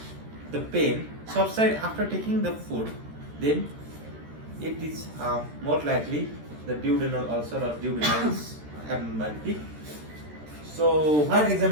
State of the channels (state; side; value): late; left; 13 ms